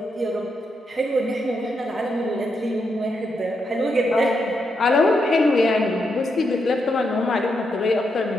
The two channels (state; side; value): normal; both; correlation 0.82